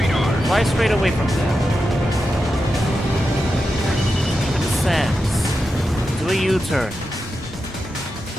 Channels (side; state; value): both; normal; correlation 0.89